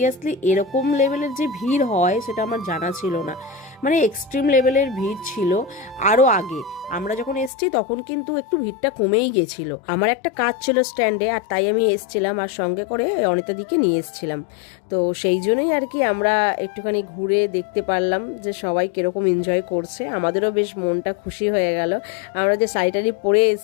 এরকম লেভেলের যে ভিড় হয় সেটা আমার জানা ছিল না, মানে এক্সট্রিম লেভেলের ভিড় ছিল। আরও আগে আমরা যখন এসছি তখন কিন্তু একটু ভিড়টা কমেই গেছিল। আমার একটা কাজ ছিল স্ট্যান্ডে, আর তাই আমি এসছিলাম, আর সঙ্গে করে অনিতাদিকে নিয়ে এসছিলাম। তো সেই জন্যই আর কি আমরা একটুখানি ঘুরে দেখতে পারলাম যে সবাই কিরকম এনজয় করছে। আমাদেরও বেশ মনটা খুশি হয়ে গেল, আমরা যে শাড়ি পরে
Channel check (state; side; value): drops out; right; at 7.5 s